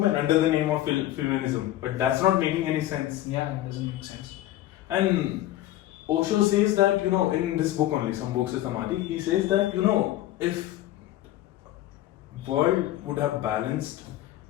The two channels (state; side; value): quieter; right; 14.3 dB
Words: under the name of feminism. But that's not making any sense. Yeah, it doesn't make sense. And Osho says that, in this book only, some books is Samadhi, he says that, if world would have balanced